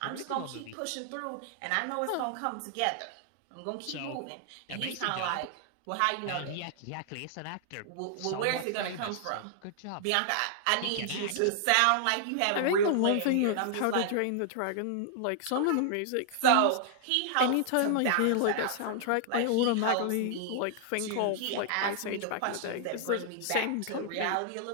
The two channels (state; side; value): different; both; correlation -0.01